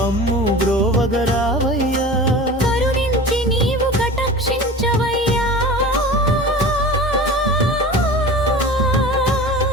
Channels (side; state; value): both; normal; correlation 0.36